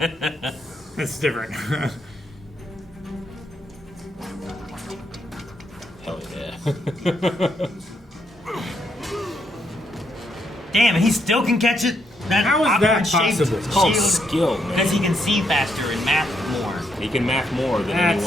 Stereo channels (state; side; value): normal; both; correlation 0.76